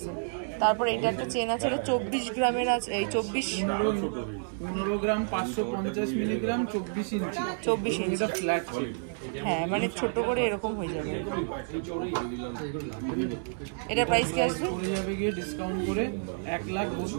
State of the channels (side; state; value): left; silent; digital silence